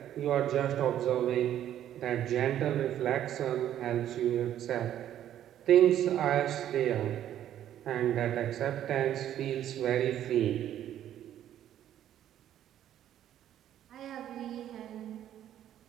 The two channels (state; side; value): quieter; left; 11.2 dB